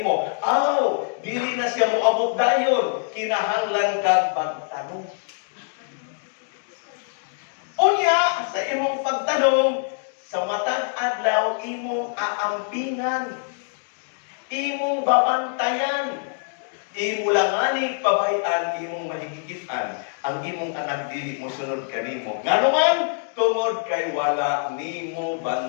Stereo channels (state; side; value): silent; right; digital silence